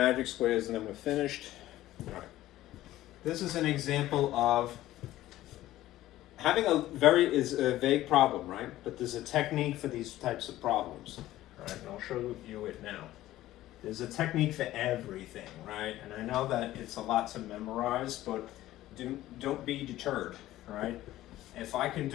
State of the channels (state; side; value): quieter; right; 15.1 dB